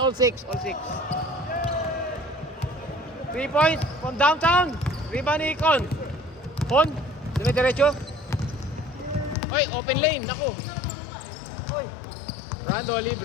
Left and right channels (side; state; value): right; drops out; at 9.3 s